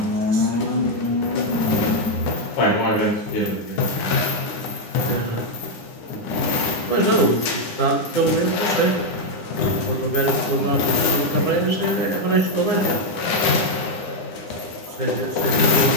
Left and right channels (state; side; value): late; right; 9.8 ms